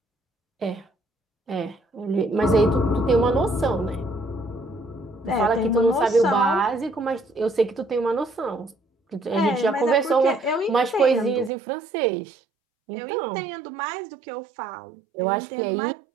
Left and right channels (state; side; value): drops out; left; at 11.5 s